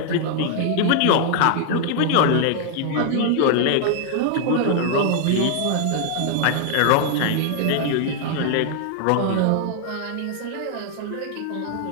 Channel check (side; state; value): both; different; correlation 0.00